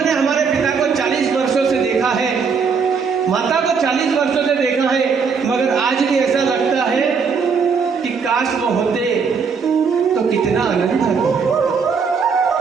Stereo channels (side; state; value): left; quieter; 5.7 dB